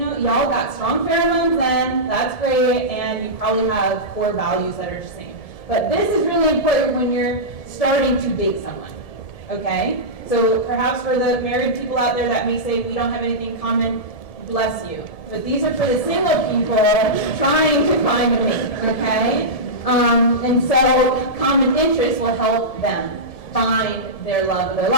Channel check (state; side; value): late; right; 1.7 ms